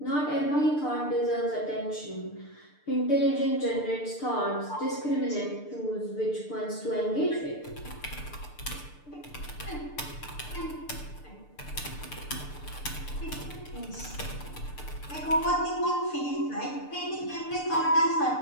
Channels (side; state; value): right; late; 6.7 ms